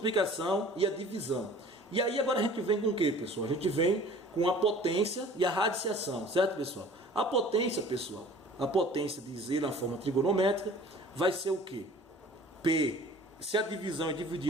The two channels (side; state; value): both; normal; correlation 0.47